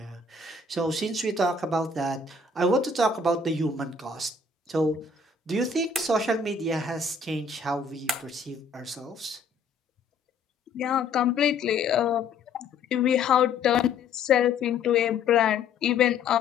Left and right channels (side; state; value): right; quieter; 4.3 dB